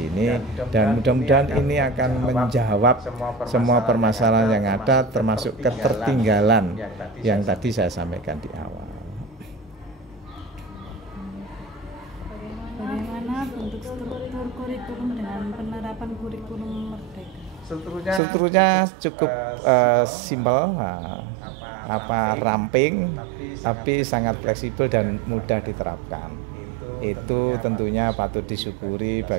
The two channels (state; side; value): drops out; left; at 18.2 s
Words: dan mudah-mudahan ini akan menjawab semua permasalahan yang ada, termasuk ketertinggalan yang tadi saya sampaikan di awal. Bagaimana bentuk struktur kurikulum dengan penerapan kurikulum Merdeka? strukturnya cukup simpel, ramping, tapi sangat fleksibel dan mudah diterapkan. Itu tentunya patut disyukuri